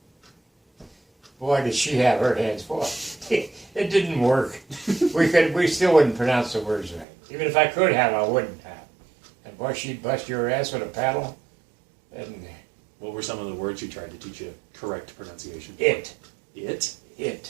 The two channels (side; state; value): left; drops out; at 7.1 s